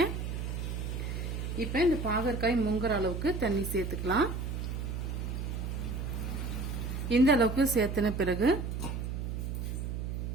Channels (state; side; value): noise; right; hum, 3 dB below the sound